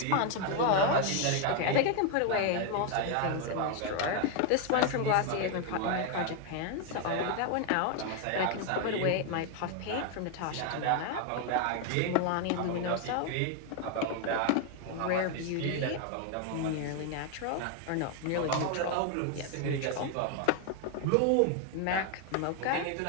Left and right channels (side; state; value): both; different; correlation 0.01